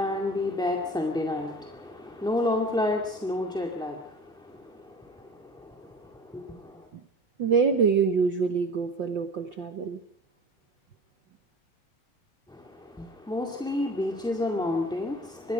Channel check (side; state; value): both; normal; correlation 0.39